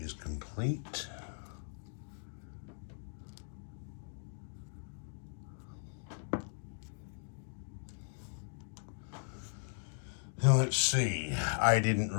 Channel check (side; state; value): right; silent; digital silence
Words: complete. Now let's see, I didn't